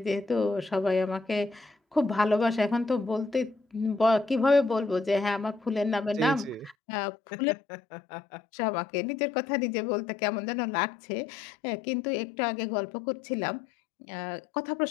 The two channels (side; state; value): right; drops out; at 6.8 s